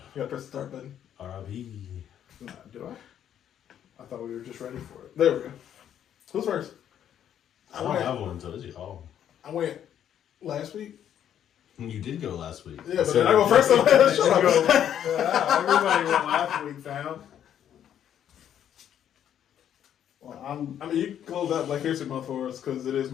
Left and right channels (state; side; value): quieter; right; 9.9 dB